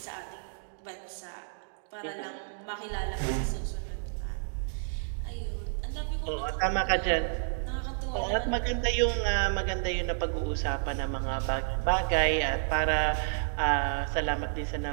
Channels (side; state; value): left; silent; digital silence